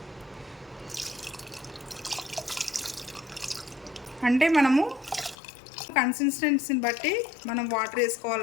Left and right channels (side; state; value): right; drops out; at 5.4 s